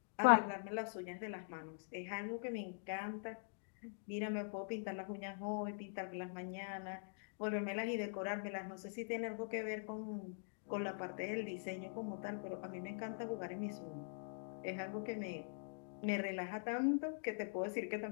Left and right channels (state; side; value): silent; right; digital silence